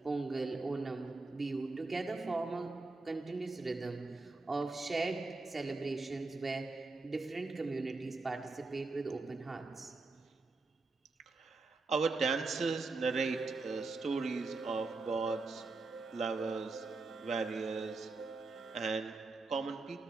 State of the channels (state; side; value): quieter; left; 3.7 dB